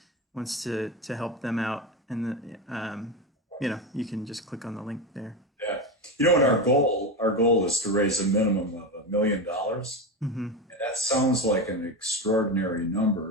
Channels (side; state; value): both; normal; correlation 0.18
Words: wants to help them out, and you can just click on the link there. Yeah. And our goal is to raise a minimum of $1 million. Mm-hmm. And that sounds like an extraordinary